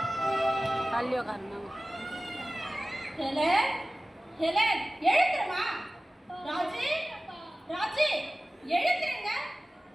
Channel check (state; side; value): normal; both; correlation 0.97